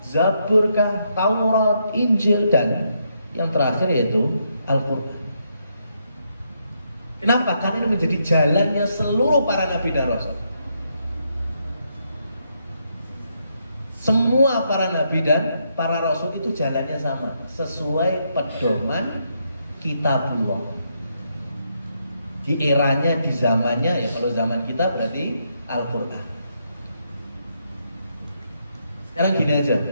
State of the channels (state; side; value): inverted; both; correlation -0.78